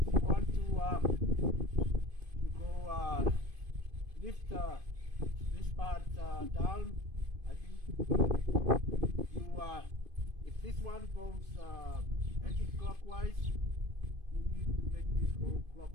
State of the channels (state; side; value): late; left; 2.5 ms